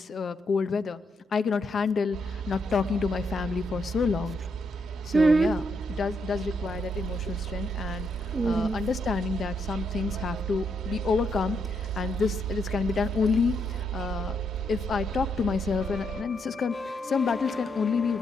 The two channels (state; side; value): normal; both; correlation 0.78